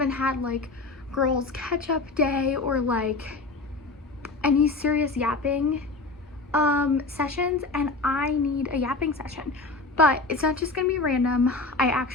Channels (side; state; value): right; quieter; 3.5 dB